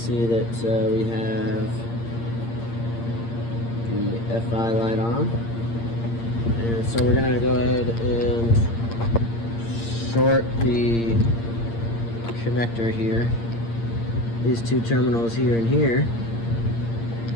that we have the FI light on. And so we're going to go ahead and short the connector here. These two terminals here and here.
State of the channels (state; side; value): late; right; 8.7 ms